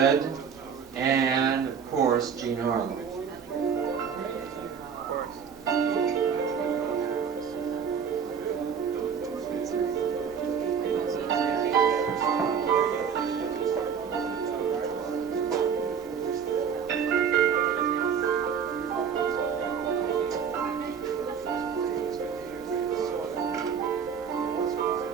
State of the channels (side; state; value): left; quieter; 7.0 dB